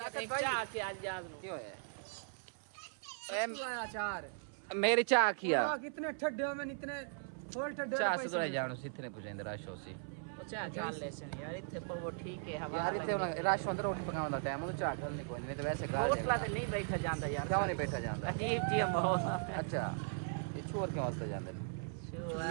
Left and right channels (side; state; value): left; silent; 52 dB below the other